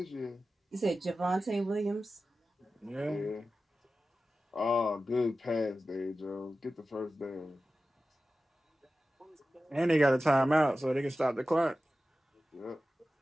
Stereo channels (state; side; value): normal; both; correlation 0.94